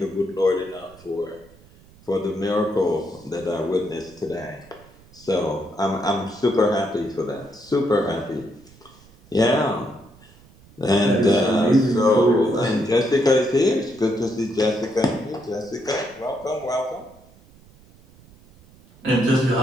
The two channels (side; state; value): right; noise; rumble, 26 dB below the sound